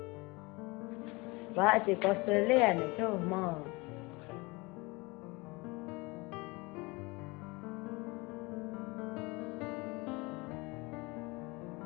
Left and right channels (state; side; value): quieter; right; 25.2 dB